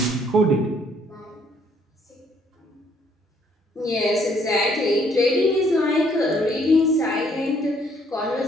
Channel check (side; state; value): both; normal; correlation 0.66